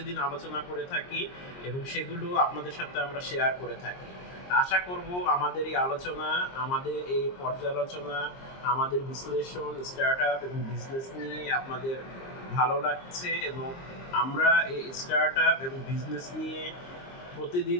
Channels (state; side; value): late; right; 22 ms